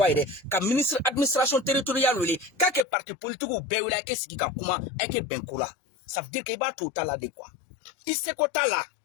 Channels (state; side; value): drops out; right; at 2.9 s